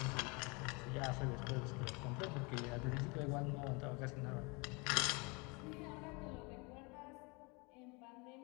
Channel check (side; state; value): right; quieter; 28.9 dB